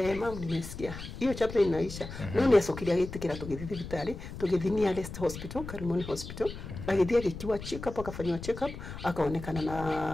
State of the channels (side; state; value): left; noise; rumble, 10 dB below the sound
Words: yeye mamu nimesikia hiyo chapter inaisha. No ni acokiria gitikira tugithi vitari tugithi nearest hospital Karimoni hospital agithia gikiwa check up akafanywa check up akaonekana